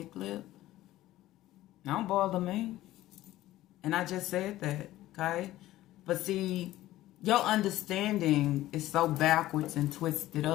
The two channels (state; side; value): quieter; right; 15.4 dB